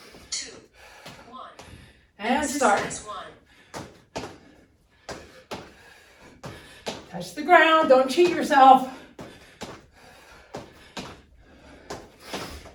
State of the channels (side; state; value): both; identical; correlation 1.00